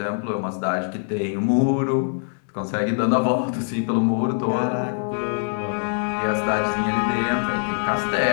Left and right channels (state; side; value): silent; right; digital silence